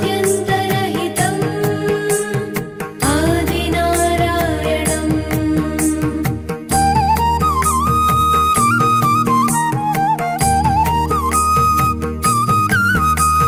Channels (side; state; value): both; identical; correlation 1.00